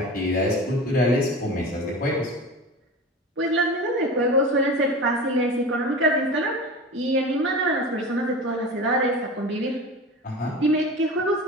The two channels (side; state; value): both; normal; correlation 0.32